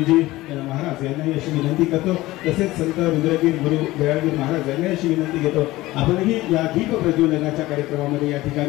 महाराज यांनाही अशी विनंती करतो, तसेच संत रुद्रगीर गुरु दयाळगीर महाराज यांनाही अशी विनंती घेतो आपणही या दीप प्रज्वलनाच्या कार्यक्रमामध्ये या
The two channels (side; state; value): right; quieter; 18.1 dB